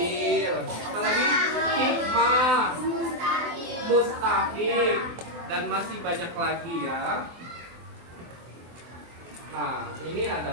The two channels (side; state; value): left; late; 24 ms